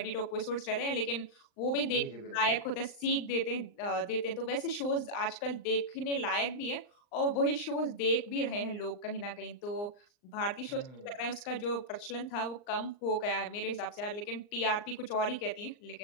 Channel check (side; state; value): right; late; 39 ms